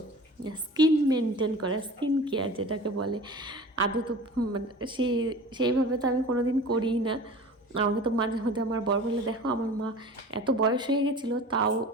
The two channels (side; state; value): both; normal; correlation 0.39